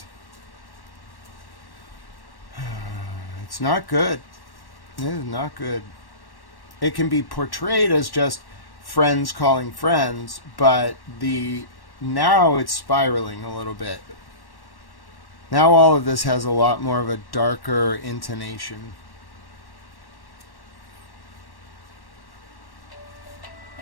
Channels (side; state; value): right; late; 1.1 ms